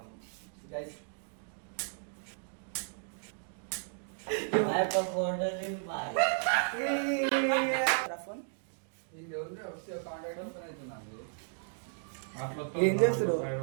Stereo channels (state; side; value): silent; left; digital silence